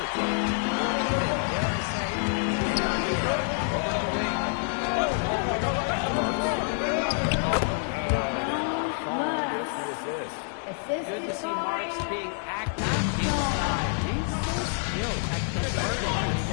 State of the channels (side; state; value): right; silent; 60 dB below the other